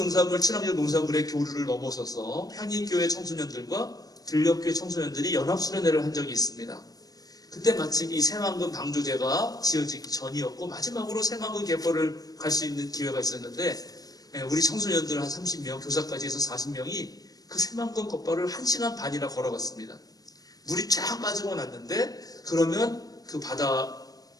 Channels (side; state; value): right; late; 0.18 ms